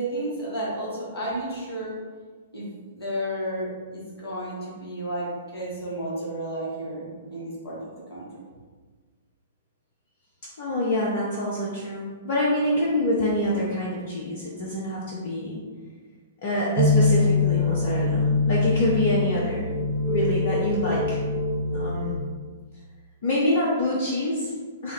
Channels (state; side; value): inverted; both; correlation -0.44